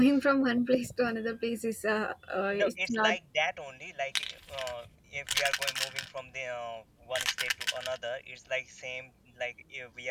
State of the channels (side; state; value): both; identical; correlation 1.00